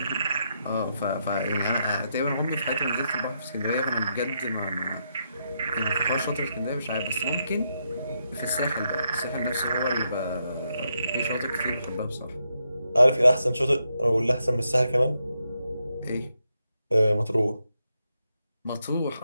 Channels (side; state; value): both; inverted; correlation -0.81